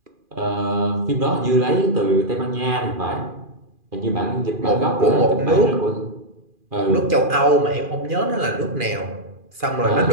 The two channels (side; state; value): left; late; 2.4 ms